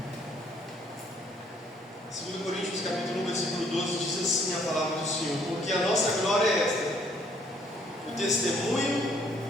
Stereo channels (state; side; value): normal; both; correlation 0.64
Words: Segundo Coríntios capítulo 1, versículo 12, diz assim a palavra do Senhor: porque a nossa glória é esta, o